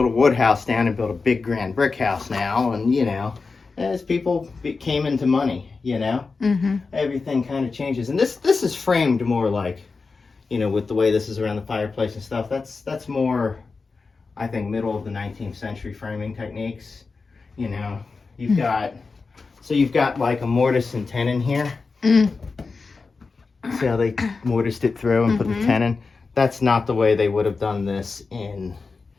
wood house down and build a big grand brick house now. And, you know, as people came into money, you know, everything kind of changes. And this is framed more like, you know, with the way this is around the fireplace and stuff. That's more, I think, middle of the 19th century framing techniques. You know, you've got like a mortise and tenon here. See how they mortised it through and put the tenon? That's not the way they would have done this in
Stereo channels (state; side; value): quieter; right; 4.3 dB